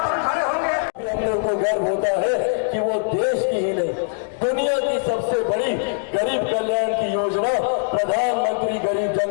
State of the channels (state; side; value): silent; right; digital silence